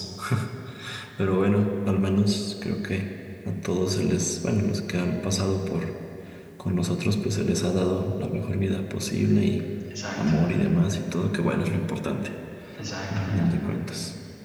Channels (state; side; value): identical; both; correlation 1.00